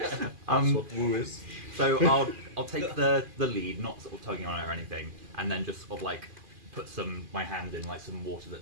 what woo is. So I'll take the lead, not sort of tugging on it or anything, and then just sort of like put my hand in like some water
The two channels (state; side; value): late; left; 2.4 ms